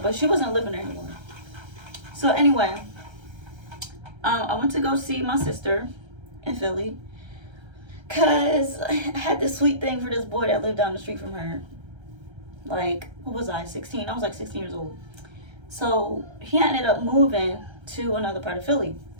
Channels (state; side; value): late; left; 1.3 ms